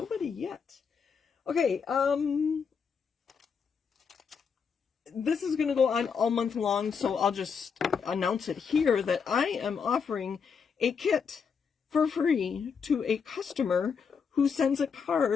yet. Okay, this is going to go on all month long, so I'll just announce it here that I am offering a kit for free to a customer who sends a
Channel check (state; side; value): quieter; right; 6.2 dB